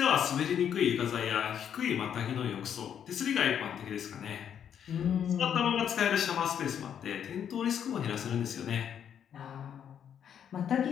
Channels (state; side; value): quieter; right; 8.8 dB